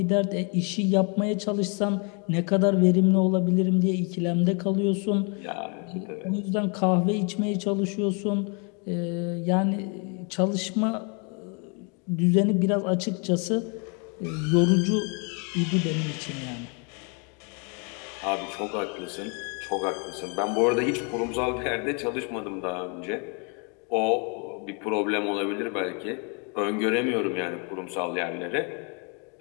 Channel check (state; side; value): quieter; right; 35.8 dB